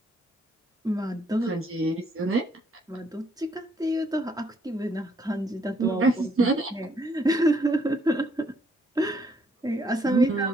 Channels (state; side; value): normal; both; correlation 0.69